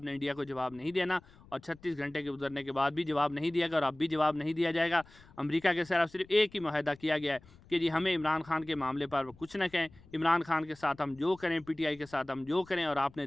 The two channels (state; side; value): noise; left; rumble, 25 dB below the sound